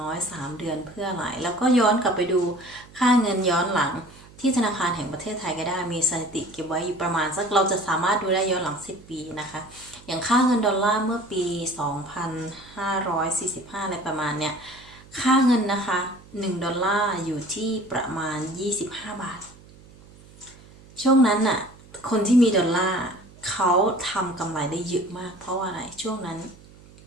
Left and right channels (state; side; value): noise; right; hum, 23 dB below the sound